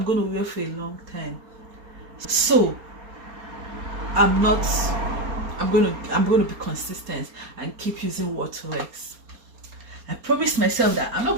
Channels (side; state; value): left; late; 4.3 ms